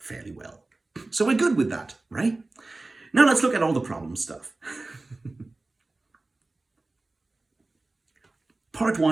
well. So we're good with that, right? Now let's look at all the problem stuff. Part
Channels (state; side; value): quieter; left; 3.2 dB